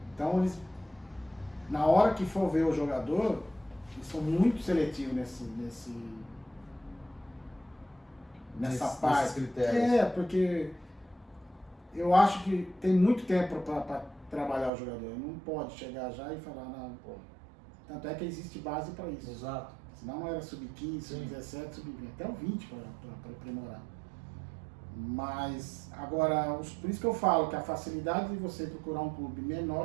Então, eles, na hora que for ver o jogador, eles são muito seletivos nessa parte. Critérios. Porque eu acho que tem muito tempo para trabalhar o jogador. Não pode chegar já e falar, não, pô. Tanto é que existe base para isso. Exato. Senão era sub-15, sub-17, sub-20, até o 20 para aprimorar. Mas, agora, por isso que eu falo que a facilidade de você procurar um clube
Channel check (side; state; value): left; drops out; at 14.7 s